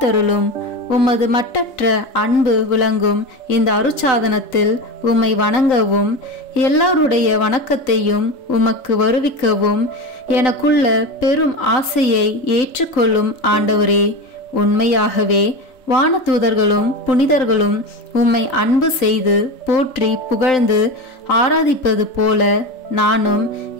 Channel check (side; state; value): right; late; 3.9 ms